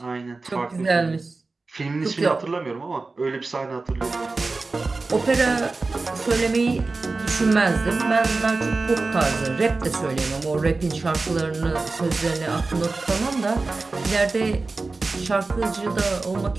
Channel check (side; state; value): left; quieter; 3.7 dB